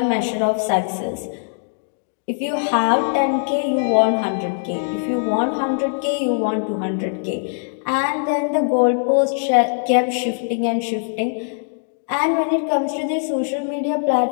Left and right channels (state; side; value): silent; right; digital silence